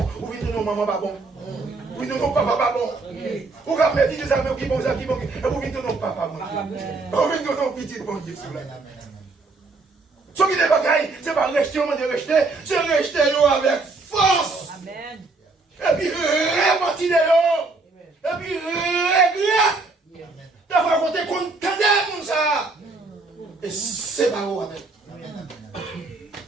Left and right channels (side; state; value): left; quieter; 3.6 dB